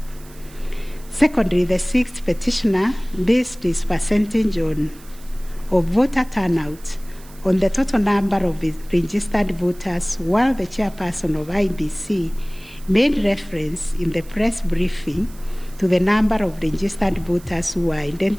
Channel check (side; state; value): right; noise; hiss, 23 dB below the sound